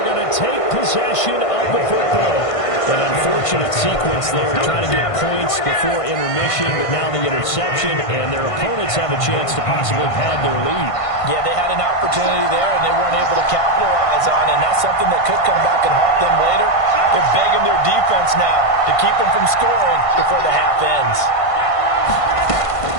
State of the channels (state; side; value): late; right; 1.5 ms